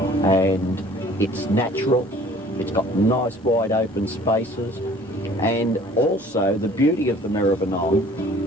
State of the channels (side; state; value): both; normal; correlation 0.52